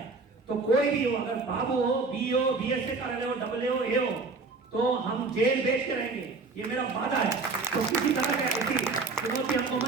तो कोई भी हो, अगर बाबू हो, बी हो, बीएसए कार्यालय हो, डबल हो, ए हो, तो हम जेल बेच के रहेंगे, ये मेरा वादा है। तो किसी तरह के ऐसी चुनौती हमको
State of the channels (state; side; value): quieter; left; 4.1 dB